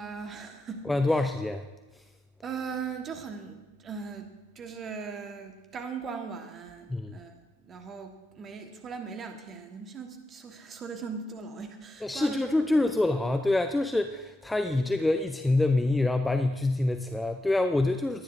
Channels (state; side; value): normal; both; correlation 0.88